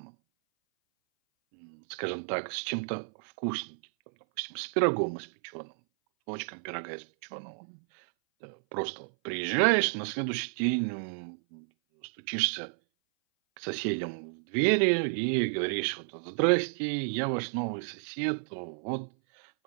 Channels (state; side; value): silent; left; 57 dB below the other